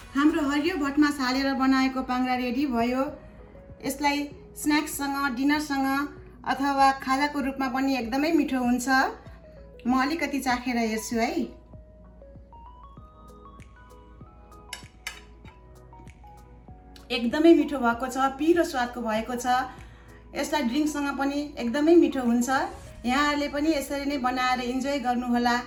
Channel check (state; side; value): identical; both; correlation 1.00